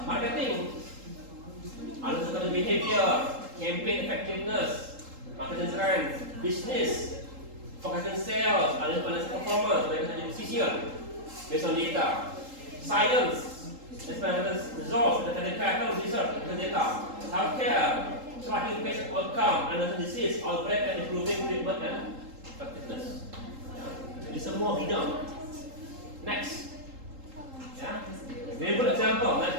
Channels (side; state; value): left; late; 3.8 ms